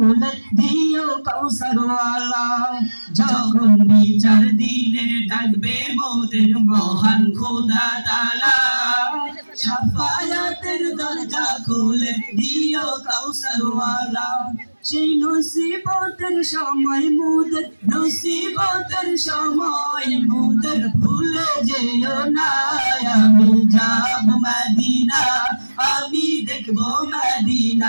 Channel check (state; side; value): inverted; both; correlation -1.00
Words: দিও কাউসার ওয়ালা। যখন বিচার দিনে ডাকবে মোদের মহান খোদা তাআলা, শাফায়াতের দরজা খুলে দিও কাউসার ওয়ালা। সেই নসিবতের সময় মোদের, নসিবতের সময় মোদের ভুলে যেও না। আমি যাব মদিনা, আমি দেখব